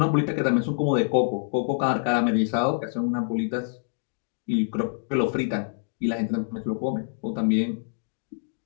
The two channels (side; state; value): right; silent; digital silence